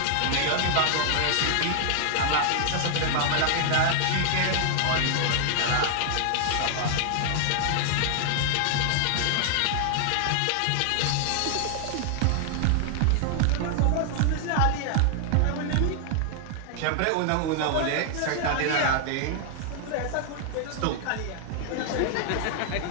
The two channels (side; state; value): both; different; correlation 0.00